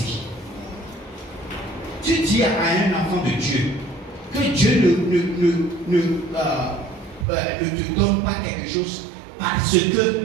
Tu dis à un enfant de Dieu que Dieu ne te donne pas quelque chose parce que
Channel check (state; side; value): drops out; left; at 7.2 s